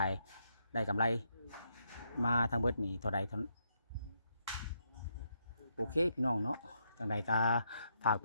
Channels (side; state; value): both; inverted; correlation -0.78